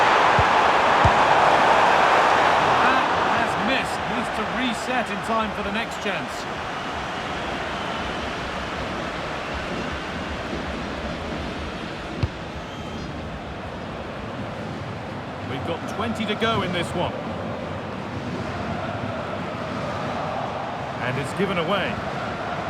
That has missed. Needs to reset in time for the next chance. We've got 20 to go in this one. And it's given away.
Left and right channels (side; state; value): both; identical; correlation 1.00